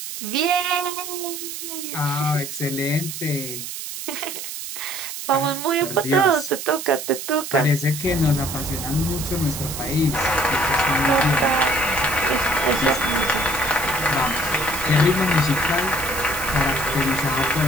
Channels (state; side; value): noise; right; hiss, 8 dB below the sound